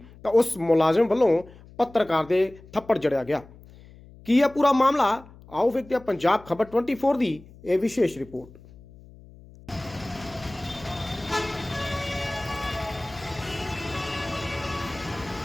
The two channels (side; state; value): left; noise; hum, 21 dB below the sound